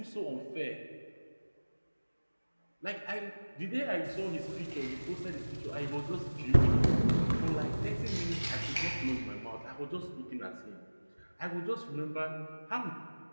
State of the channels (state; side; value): inverted; both; correlation -1.00